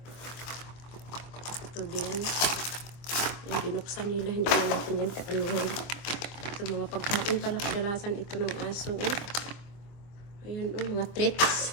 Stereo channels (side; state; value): right; late; 24 ms